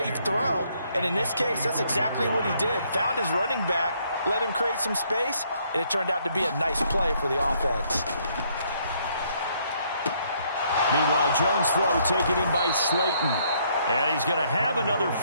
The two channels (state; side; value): inverted; both; correlation -0.69